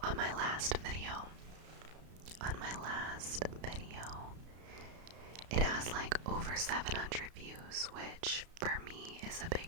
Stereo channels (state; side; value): late; left; 33 ms